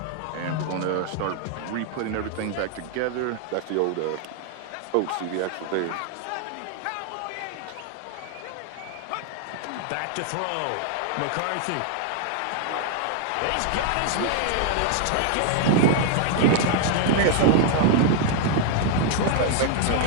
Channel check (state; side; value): different; both; correlation 0.00